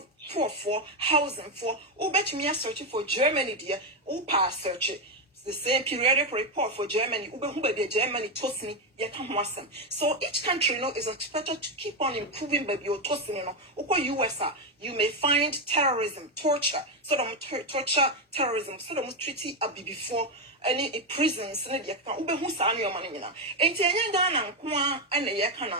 poor for housing for bet me searching for Germany dear, pass search it. The same periodic report for Germany, Germany, Tosni, so each country is expected to keep on improving baby your Tosni, US, you may find terrorism, torture, torture, terrorism, treaty before any prisons,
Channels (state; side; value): normal; both; correlation 0.07